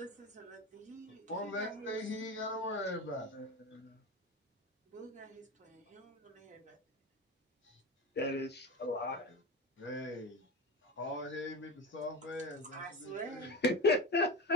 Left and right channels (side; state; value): both; normal; correlation 0.26